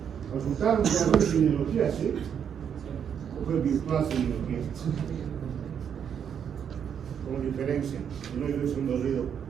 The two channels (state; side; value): quieter; left; 8.1 dB